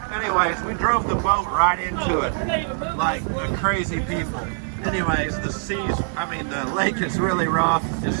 Anyways, we drove the boat right into it like crazy people. Anyways, the lake is really rough. It's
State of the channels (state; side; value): silent; left; 63 dB below the other